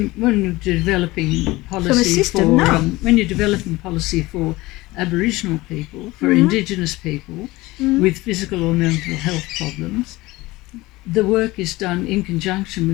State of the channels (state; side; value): quieter; right; 20.0 dB